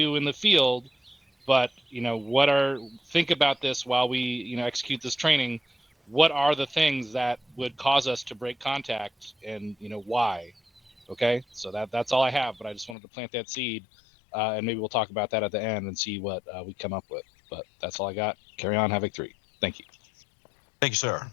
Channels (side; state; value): right; drops out; at 13.0 s